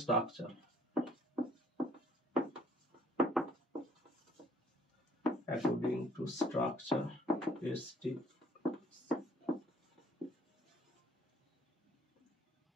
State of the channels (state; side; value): normal; both; correlation 0.60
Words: structure, according to structure,